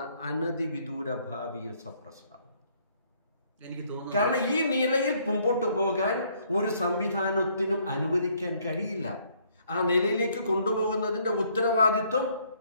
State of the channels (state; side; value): inverted; both; correlation -0.67